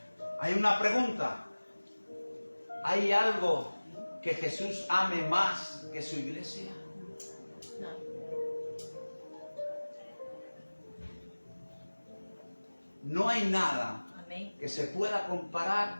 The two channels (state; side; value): inverted; both; correlation -1.00